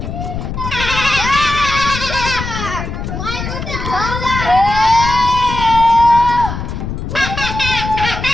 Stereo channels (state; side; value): noise; left; rumble, 6 dB below the sound